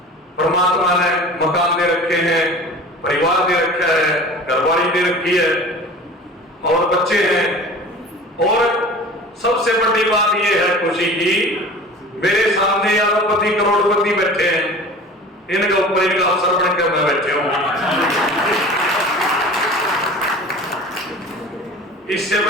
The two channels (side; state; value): both; normal; correlation 0.40